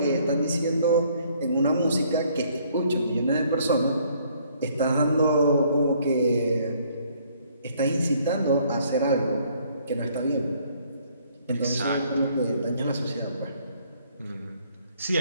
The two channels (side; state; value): both; inverted; correlation -0.64